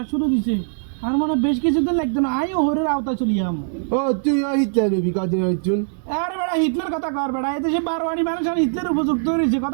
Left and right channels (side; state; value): left; silent; 65 dB below the other